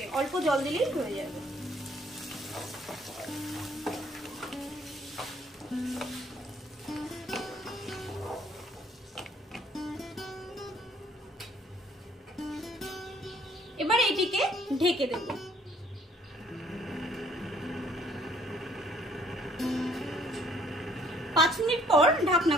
অল্প জল দিলেই হয়ে যাবে। এবার এটিকে ঢেকে দেব। 5 মিনিট পর ঢাকনা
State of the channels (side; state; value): both; normal; correlation 0.62